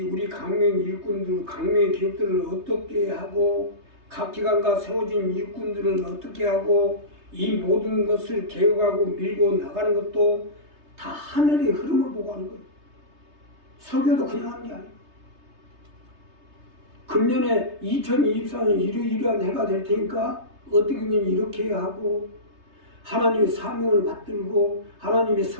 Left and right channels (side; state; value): left; late; 3.3 ms